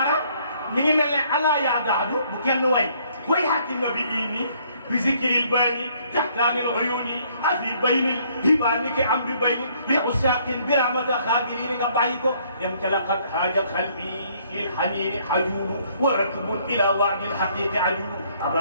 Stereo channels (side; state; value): both; inverted; correlation -0.64